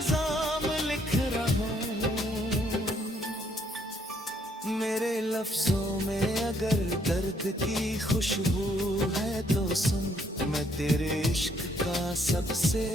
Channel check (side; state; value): both; normal; correlation 0.69